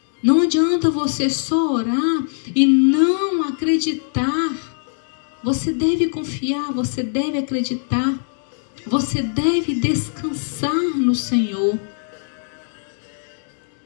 Não adianta você só orar e não acreditar. Você deve confiar, você deve acreditar. Você deve descansar no Senhor.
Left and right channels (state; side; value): silent; right; digital silence